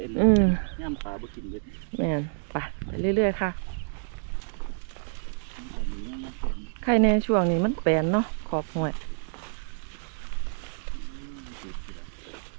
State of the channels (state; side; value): silent; left; digital silence